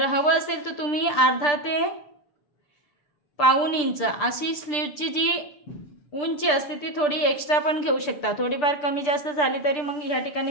हवं असेल तर तुम्ही अर्धा ते पाऊण इंच अशी स्लीवची जी उंची असते ती थोडी एक्स्ट्रा पण घेऊ शकता. थोडीफार कमी जास्त झाली तरी मग ह्या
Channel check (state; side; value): late; right; 6.8 ms